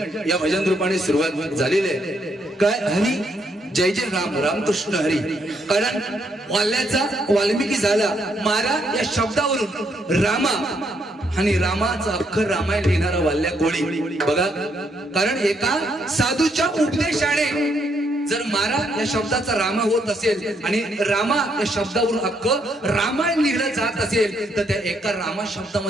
या भजन रूपाने सुरुवात झालेली आहे. काय हरी जय जय राम रामकृष्ण हरी. कारण वाल्याचा वाल्मिकी झाला मारा या शब्दावरून रामा आणि रामाचा अख्खर रामायण लिहिणारा वाल्या कोळी बघा. कारण एका साधूच्या उपदेशाने जर मारा या शब्दाचा रामा होत असेल आणि रामा या शब्दावरून अख्ख रामायण लिहिलं जात असेल तर त्या एका रामा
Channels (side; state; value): both; normal; correlation 0.74